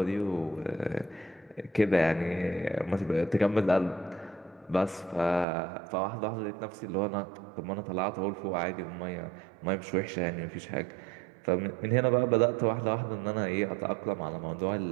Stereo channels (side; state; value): left; drops out; at 5.5 s